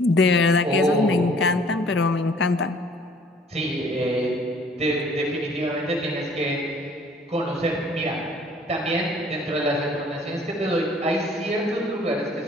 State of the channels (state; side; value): normal; both; correlation 0.56